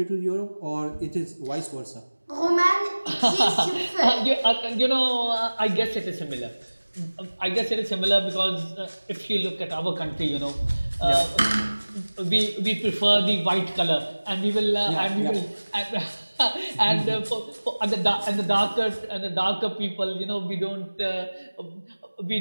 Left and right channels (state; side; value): inverted; both; correlation -1.00